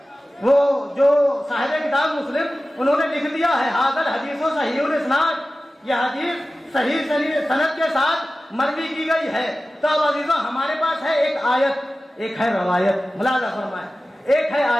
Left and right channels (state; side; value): normal; both; correlation 0.95